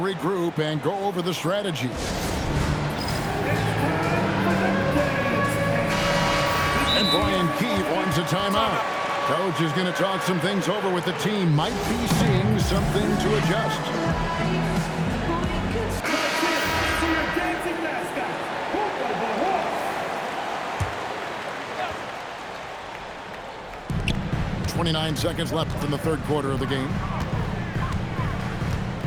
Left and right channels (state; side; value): identical; both; correlation 1.00